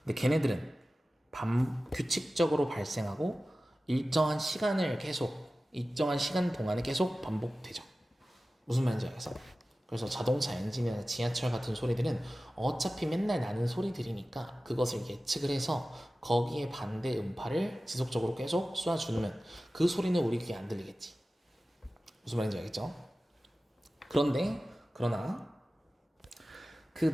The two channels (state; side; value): normal; both; correlation 0.96